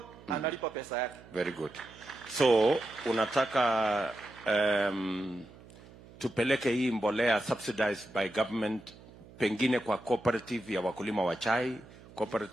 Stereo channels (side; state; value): right; noise; hum, 21 dB below the sound